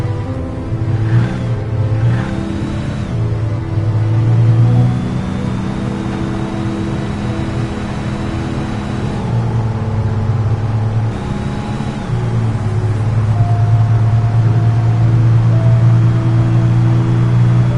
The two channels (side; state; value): both; identical; correlation 1.00